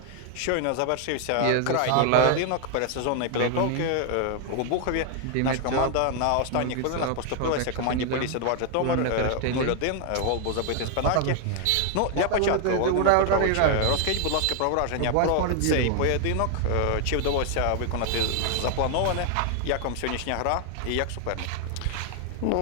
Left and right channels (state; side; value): different; both; correlation 0.00